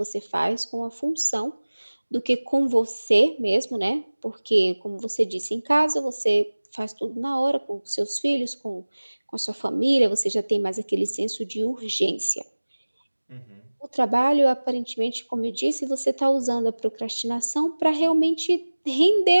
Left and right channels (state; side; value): inverted; both; correlation -1.00